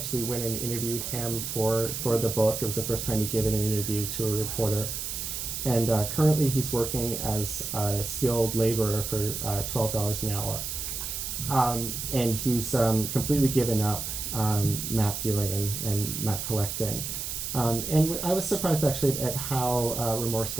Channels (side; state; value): right; noise; hiss, 5 dB below the sound